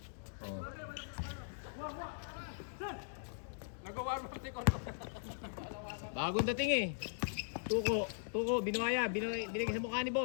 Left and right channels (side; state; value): right; silent; digital silence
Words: Oh. Bagong dating eh. Tuko, binuhaya. Binigay sa mukha ni